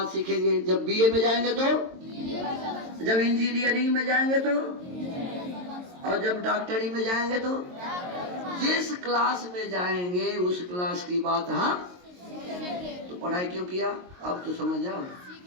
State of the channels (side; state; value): left; late; 22 ms